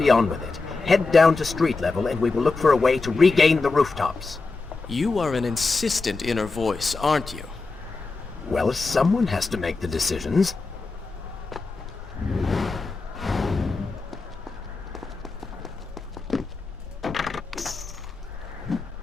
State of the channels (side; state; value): right; quieter; 3.8 dB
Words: on with it. Head down to street level and we will look for a way to regain the rooftops. You are an insistent inner voice, aren't you? Well, someone has to make the decisions.